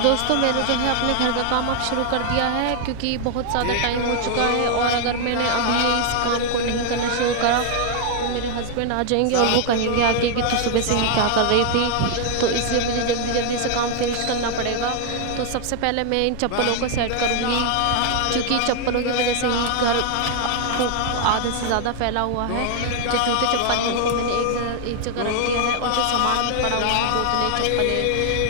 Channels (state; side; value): different; both; correlation 0.00